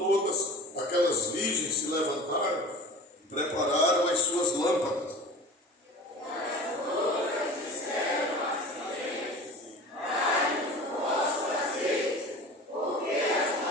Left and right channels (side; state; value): both; normal; correlation 0.37